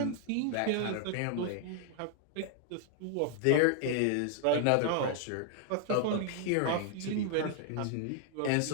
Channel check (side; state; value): both; different; correlation 0.00